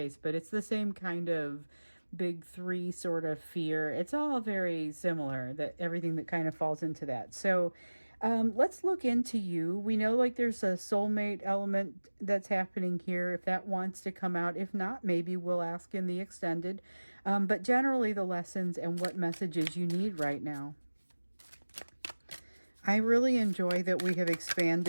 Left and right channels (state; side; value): inverted; both; correlation -1.00